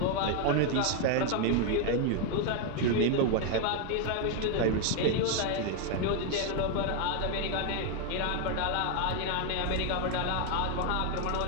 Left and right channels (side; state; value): both; different; correlation 0.01